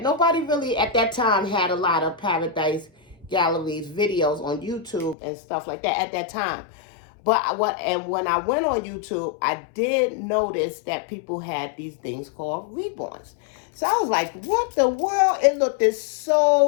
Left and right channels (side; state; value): right; drops out; at 5.2 s